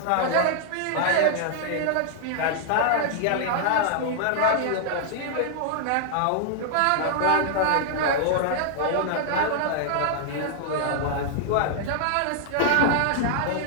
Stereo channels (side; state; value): both; different; correlation -0.01